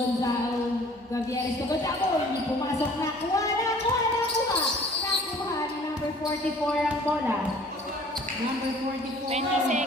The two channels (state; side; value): normal; both; correlation 0.51